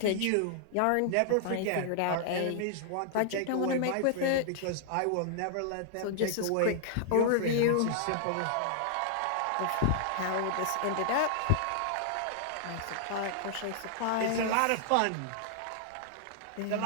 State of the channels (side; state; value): both; different; correlation -0.01